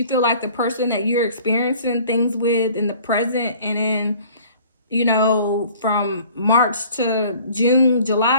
feel like the person that you're experiencing things with in the present and in, you know, from March to June,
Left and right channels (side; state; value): both; inverted; correlation -0.50